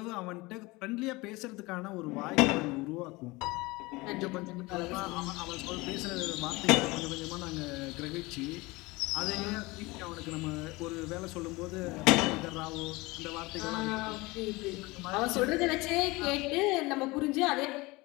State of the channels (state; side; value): quieter; right; 22.7 dB